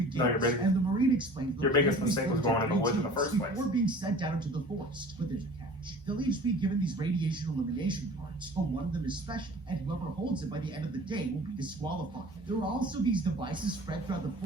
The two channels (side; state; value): both; normal; correlation 0.44